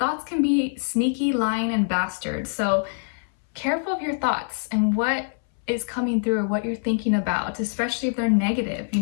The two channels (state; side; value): silent; right; 62 dB below the other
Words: can be sneaky, lying, and bastards. So careful of your thoughts and what is coming through or what you're thinking about, especially if they're negative.